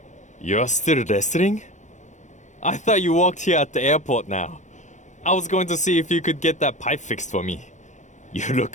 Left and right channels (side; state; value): right; late; 0.35 ms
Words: You're still wrestling? I thought you walked here at the airport now. I was going to see if you could get that pipe fixed for me. You look